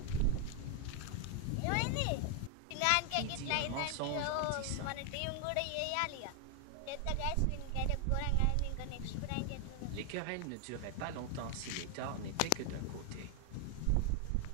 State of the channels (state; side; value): different; both; correlation 0.00